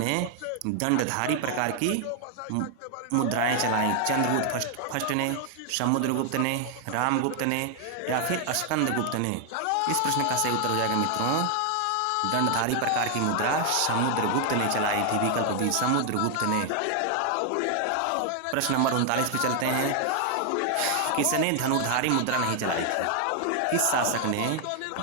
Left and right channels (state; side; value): different; both; correlation 0.00